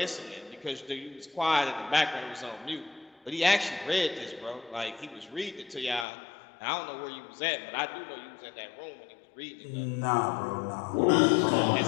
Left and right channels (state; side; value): drops out; right; at 6.1 s